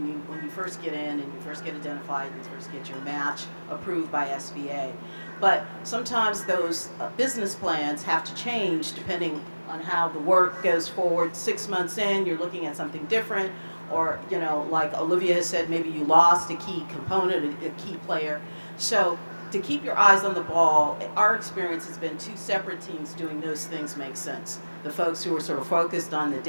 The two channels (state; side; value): inverted; both; correlation -1.00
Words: when you first get in and you first get identified and you first get your match approved by SBA. But sometimes those business plans have to change depending on how the work goes forward. 6 months in, you're looking at something different, or like Olivia has said, maybe you lost a key component, a key player. So to keep your eyes on the ball, our experience has been 2 separate teams doing those things make sense. The folks who are sort of focused on the